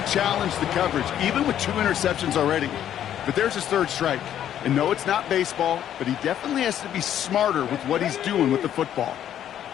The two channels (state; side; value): quieter; right; 10.6 dB